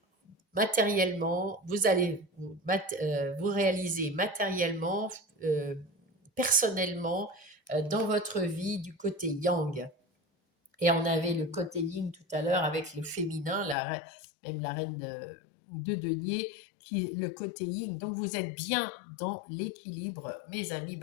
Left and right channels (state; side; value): drops out; right; at 13.8 s